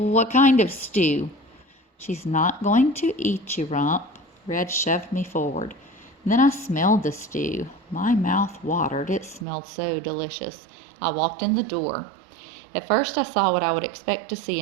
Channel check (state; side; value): drops out; left; at 9.5 s